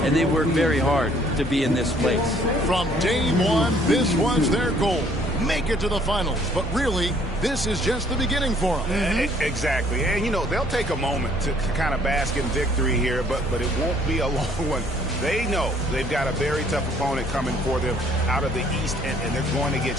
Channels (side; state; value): both; normal; correlation 0.61